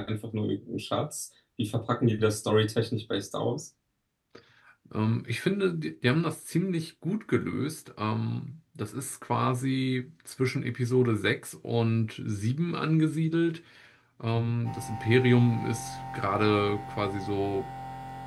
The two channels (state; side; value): identical; both; correlation 1.00